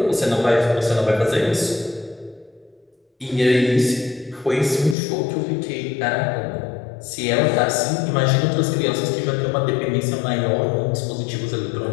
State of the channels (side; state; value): right; drops out; at 5.0 s